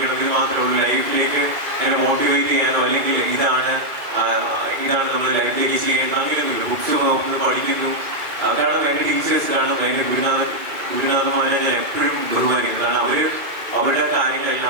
ഇത് മാത്രമേ ഉള്ളൂ. ലൈഫിലേക്ക് എന്നെ മോട്ടിവേറ്റ് ചെയ്യാനോ അല്ലെങ്കിൽ ഇതാണ് നമ്മൾ ലൈഫിലേക്ക് ചെയ്യേണ്ടത് അങ്ങനെയൊന്നുമില്ല. ബുക്സ് നോക്കുന്നു, പഠിക്കുന്നു. അതാണ് എൻ്റെ ടീച്ചേഴ്സിലാണ് എൻ്റെ ഗുരുനാഥന്മാരെ ഞാൻ എപ്പോഴും ബഹുമാനിക്കുന്നത്. കാരണം അവരുടെ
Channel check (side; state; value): left; late; 2.4 ms